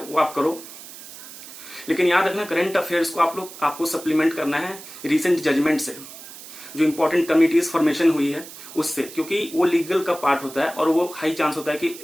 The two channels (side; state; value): right; noise; hiss, 15 dB below the sound